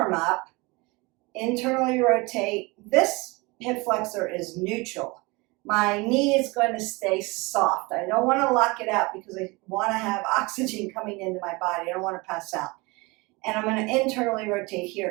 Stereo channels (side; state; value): left; quieter; 25.3 dB